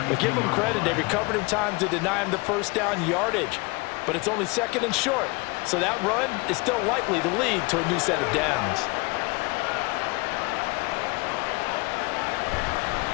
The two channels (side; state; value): right; quieter; 26.6 dB